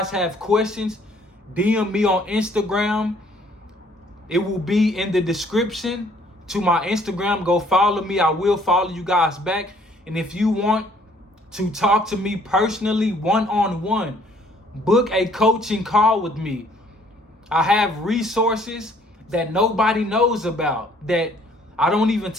have questions, DM me on Instagram. It will be in the description to my Instagram. Go follow me. I will follow you guys back. And if you want to talk to me personally, one-on-one, book a coaching call with me. I have resources that nobody knows about, that I don't even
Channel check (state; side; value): normal; both; correlation 0.61